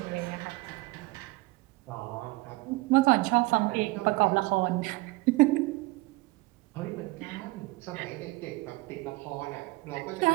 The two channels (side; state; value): left; quieter; 21.8 dB